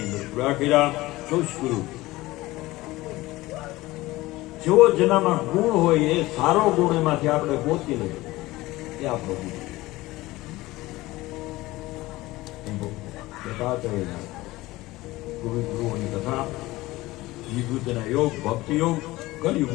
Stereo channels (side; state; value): right; quieter; 18.9 dB